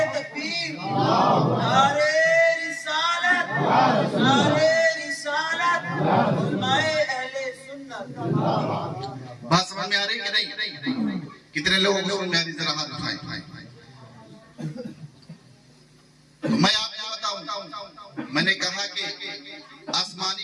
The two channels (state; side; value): identical; both; correlation 1.00